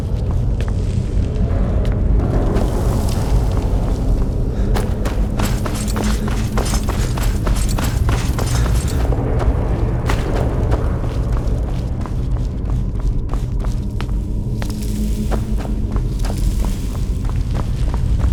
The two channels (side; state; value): both; identical; correlation 1.00